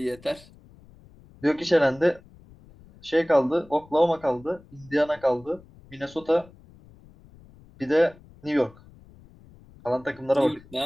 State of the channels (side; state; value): left; noise; rumble, 24 dB below the sound